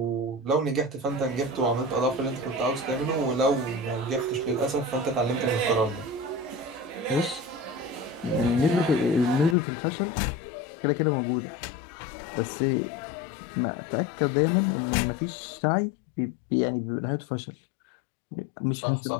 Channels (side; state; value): right; drops out; at 9.6 s